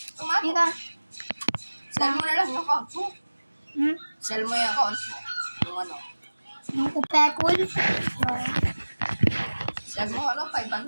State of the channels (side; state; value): both; inverted; correlation -1.00